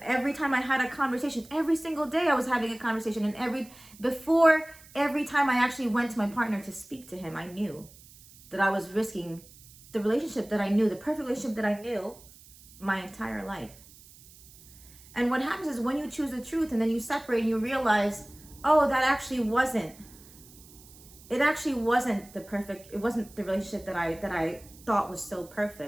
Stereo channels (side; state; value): right; noise; hiss, 22 dB below the sound